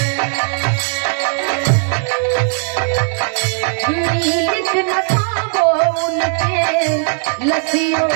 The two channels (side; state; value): left; silent; 68 dB below the other